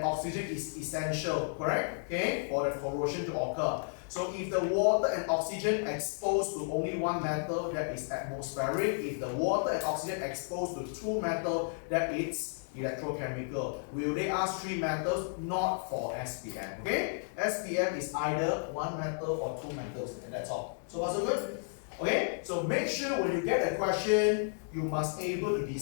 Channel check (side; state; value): right; silent; 56 dB below the other